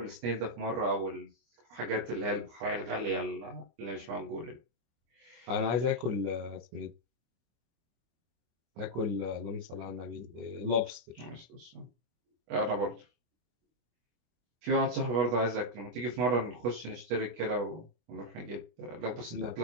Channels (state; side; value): late; left; 25 ms